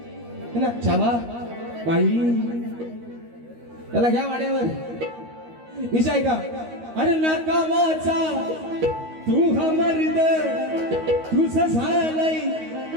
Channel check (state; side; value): late; left; 13 ms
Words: है ना चावा बाई त्याला घ्या वाड्यावर. विषय का अरे नाकामाचा तू हा मर्द तुझं झालंय